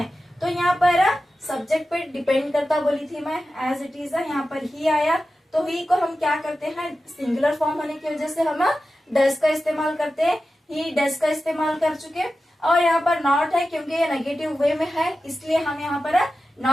तो यहाँ पर सब्जेक्ट पे डिपेंड करता बोली थी मैं, एज इट इज यहाँ पर ही आया। तो ही को हम क्या करते हैं, सिंगुलर फॉर्म होने की वजह से हम डज का इस्तेमाल करते हैं। ही डज का इस्तेमाल कर चुके। और यहाँ पर नॉट है, क्योंकि ये नेगेटिव वे में है, इसलिए हम यहाँ पर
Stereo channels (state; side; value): normal; both; correlation 0.93